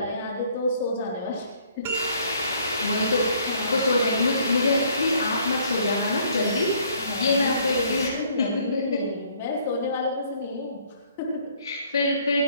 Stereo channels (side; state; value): both; inverted; correlation -0.62